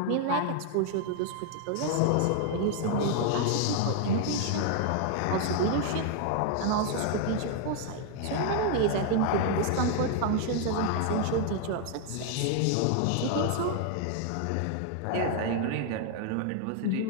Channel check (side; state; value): both; different; correlation 0.00